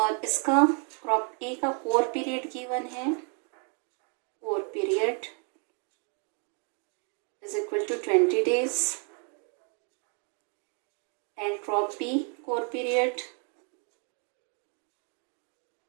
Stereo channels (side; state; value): left; quieter; 39.2 dB